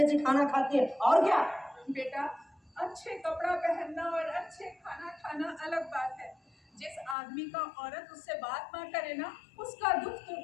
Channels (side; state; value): right; drops out; at 7.2 s